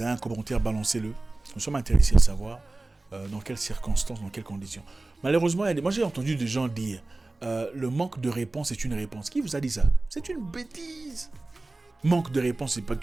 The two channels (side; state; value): left; quieter; 3.0 dB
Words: un commentaire, balancez-le. Nous sommes intéressés à savoir dans quelles circonstances, dans quelles conditions. Malheureusement, moi j'ai entendu des gens dire le manque de réponse est une réponse. Qui vous a dit ça? C'est une bêtise. Manque de réponse, c'est pas